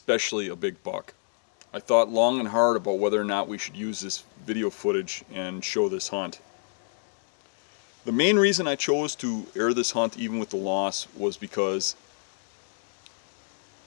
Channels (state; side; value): silent; right; 59 dB below the other